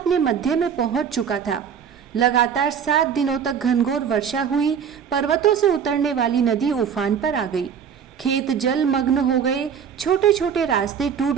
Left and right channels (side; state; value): left; quieter; 7.6 dB